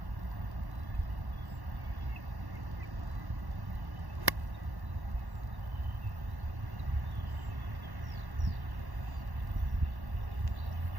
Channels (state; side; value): late; left; 1.1 ms